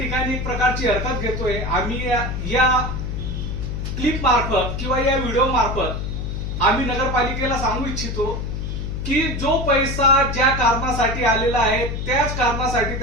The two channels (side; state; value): left; noise; hum, 4 dB below the sound